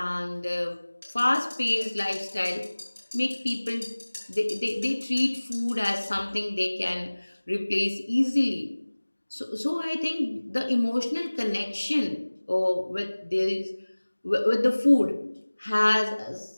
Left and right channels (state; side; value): inverted; both; correlation -1.00